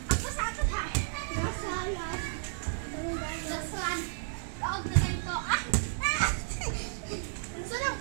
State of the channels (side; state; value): left; silent; digital silence